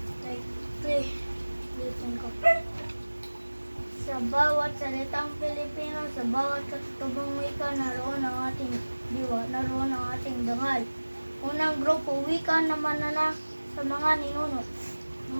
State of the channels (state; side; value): inverted; both; correlation -1.00